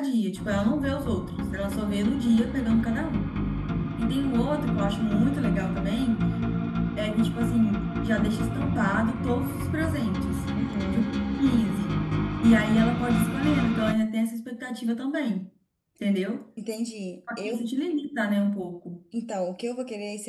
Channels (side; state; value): both; identical; correlation 1.00